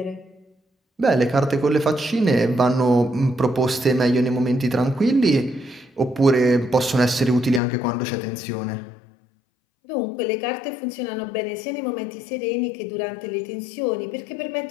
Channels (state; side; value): drops out; right; at 7.6 s